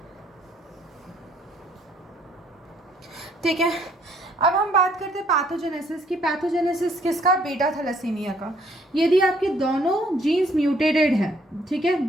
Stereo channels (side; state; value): both; normal; correlation 0.64